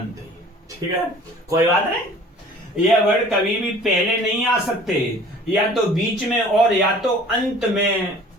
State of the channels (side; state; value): both; normal; correlation 0.49